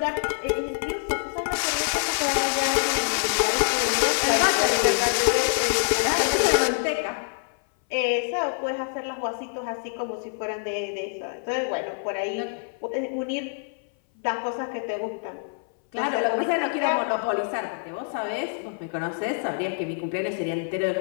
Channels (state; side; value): silent; right; 59 dB below the other